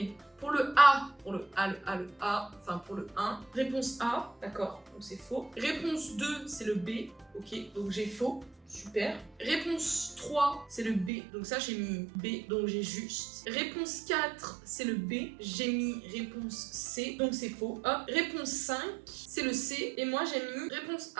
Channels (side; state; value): left; drops out; at 11.1 s